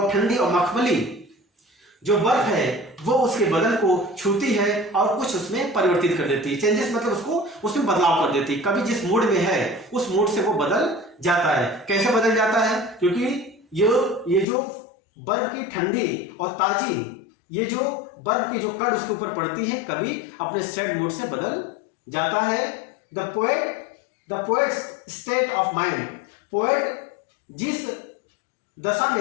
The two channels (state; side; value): drops out; right; at 14.5 s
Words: ठंडी और मखमली जो बर्फ है वो उसके बदन को छूती है और कुछ उसमें परिवर्तित कर देती है। चेंजेस मतलब उसको उसमें बदलाव कर देती है। कभी जिस मूड में है उस मूड से वो बदल जाता है। कैसे बदल जाता है, क्योंकि ये जो बर्फ की ठंडी और ताजी, ये जो बर्फ की जो कण उसके ऊपर पड़ती है, कभी अपने सैड मूड से बदल जाता है। The poet state of mind, poet जिस दशा